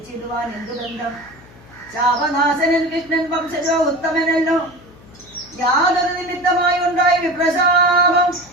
എന്തു ബന്ധം? ശാപനാശനൻ കൃഷ്ണൻ വംശജോ ഉത്തമനല്ലോ. യാതൊരു നിമിത്തമായി ഉണ്ടായ വിപ്രശാപം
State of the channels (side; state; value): left; noise; hum, 24 dB below the sound